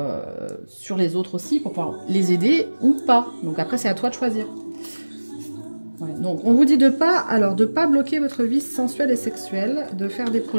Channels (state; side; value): inverted; both; correlation -1.00